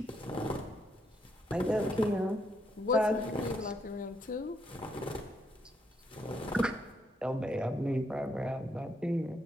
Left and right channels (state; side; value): normal; both; correlation 0.76